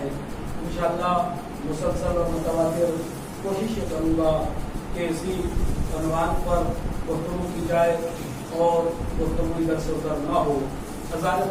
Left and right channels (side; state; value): both; identical; correlation 1.00